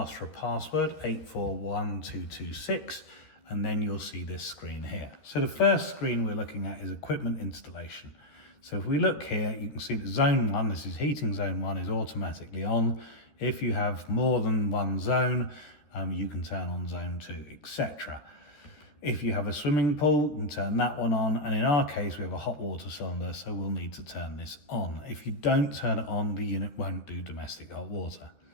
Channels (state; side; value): late; right; 13 ms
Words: for a password, 841226, and then you'll see this screen here. So the first screen we're looking at is equipment installation. So if we look here, you can see that zone 1, this is heating zone 1, is automatically on. If you have more than one zone, you can turn on zone 2, etc. If you have a swimming pool, you can turn that one on, and in our case we have a hot water cylinder, so we'll need to turn this on. If you don't turn it on, the unit won't do domestic hot water.